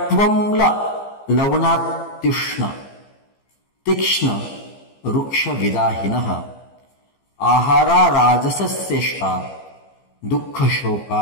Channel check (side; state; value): right; late; 15 ms